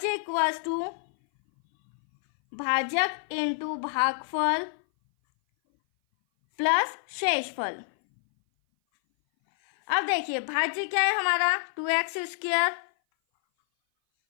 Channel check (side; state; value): right; silent; 58 dB below the other